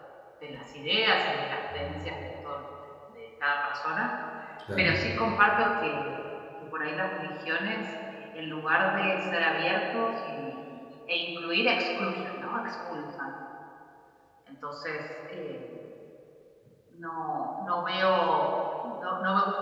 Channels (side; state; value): both; identical; correlation 1.00